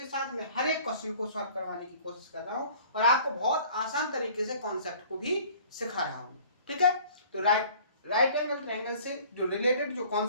साथ मैं हर एक क्वेश्चन को सॉल्व करवाने की कोशिश कर रहा हूं और आपको बहुत आसान तरीके से कॉन्सेप्ट को भी सिखा रहा हूं। ठीक है, तो राइट एंगल ट्रायंगल से जो रिलेटेड जो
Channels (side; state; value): both; inverted; correlation -0.50